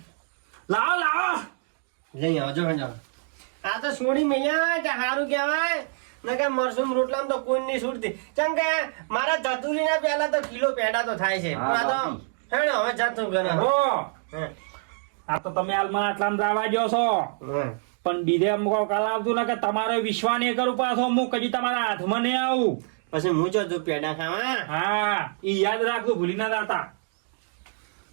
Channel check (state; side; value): silent; left; 59 dB below the other